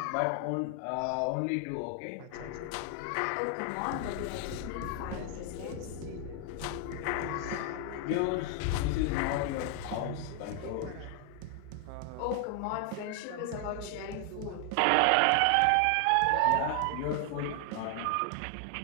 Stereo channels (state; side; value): different; both; correlation 0.00